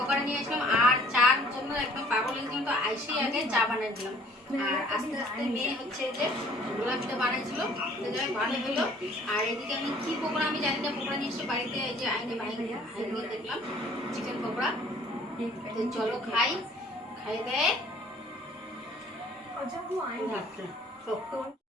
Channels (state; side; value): normal; both; correlation 0.55